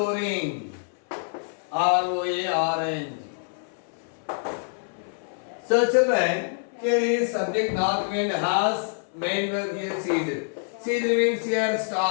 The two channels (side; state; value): right; silent; 58 dB below the other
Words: ROARNG. So children, here is subject north wind has, main verb here ceased. Ceased means here